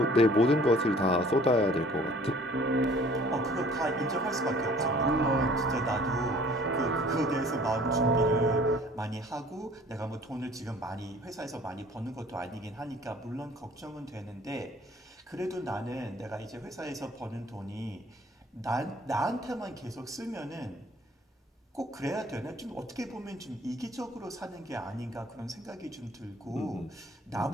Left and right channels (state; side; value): normal; both; correlation 0.52